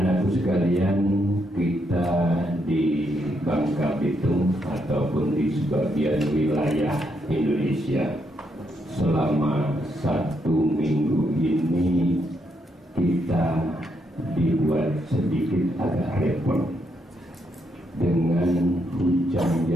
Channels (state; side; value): normal; both; correlation 0.78